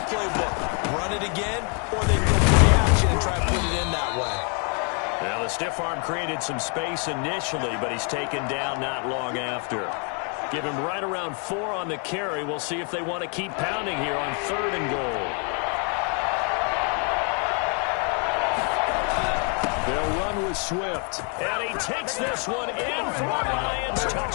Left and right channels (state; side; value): quieter; right; 38.5 dB